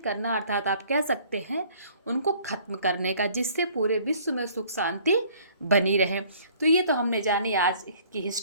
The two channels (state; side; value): inverted; both; correlation -0.56